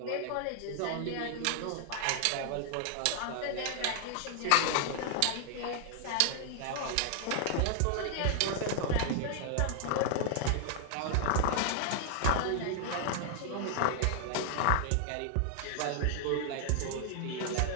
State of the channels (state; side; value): different; both; correlation 0.00